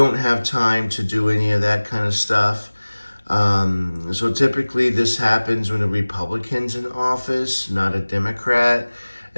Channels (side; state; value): both; inverted; correlation -1.00